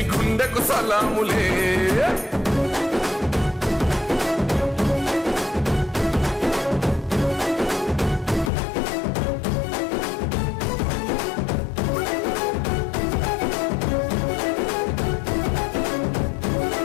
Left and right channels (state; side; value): drops out; right; at 8.5 s